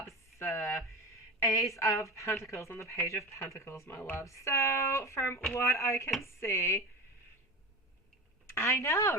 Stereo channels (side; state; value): both; normal; correlation 0.27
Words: Ace of Pentacles, and the Page of Pentacles, my love. So, from what I can see, I know,